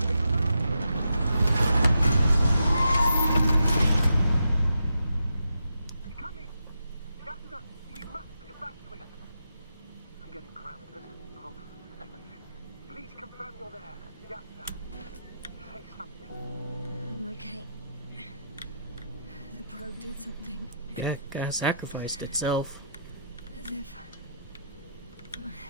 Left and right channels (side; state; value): both; inverted; correlation -0.81